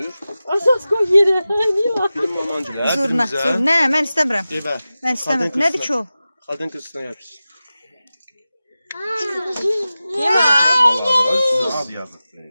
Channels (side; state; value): both; inverted; correlation -0.95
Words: Asas koy yere. Niye var? Film olmancılar. Zurna. Ne? Mən istəmirəm. Eyvə. Mən istəmirəm. Nədir ki o? Qadın kızına yapış. Al yazıq.